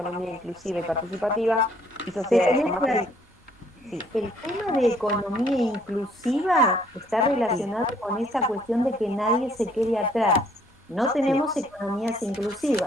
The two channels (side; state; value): both; normal; correlation 0.64